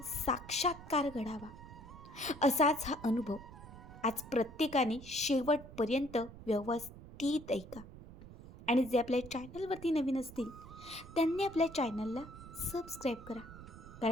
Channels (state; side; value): noise; right; rumble, 16 dB below the sound